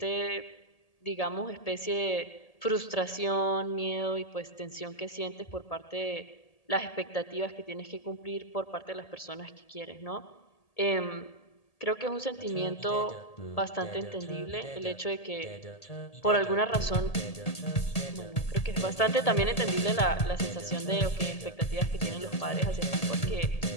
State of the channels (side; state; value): right; late; 1.8 ms